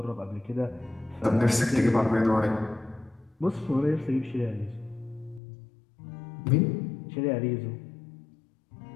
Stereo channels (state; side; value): drops out; right; at 5.4 s